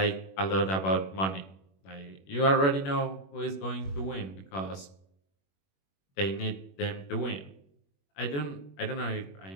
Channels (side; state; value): right; late; 21 ms